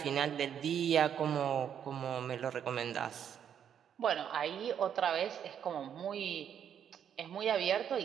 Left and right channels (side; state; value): left; quieter; 8.7 dB